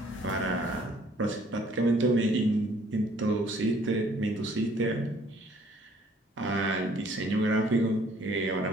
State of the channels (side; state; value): both; normal; correlation 0.60